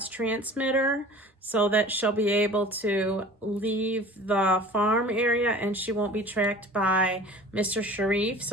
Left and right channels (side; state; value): both; normal; correlation 0.43